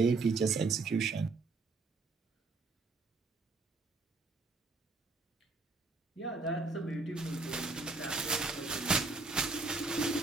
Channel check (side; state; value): left; quieter; 3.8 dB